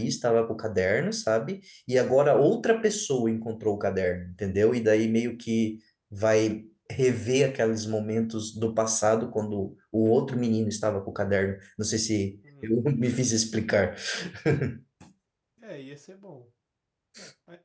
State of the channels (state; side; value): identical; both; correlation 1.00